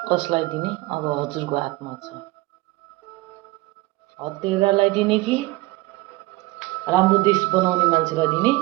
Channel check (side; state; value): left; quieter; 20.3 dB